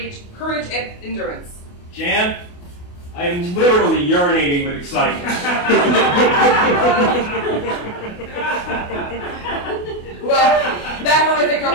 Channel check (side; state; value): right; late; 28 ms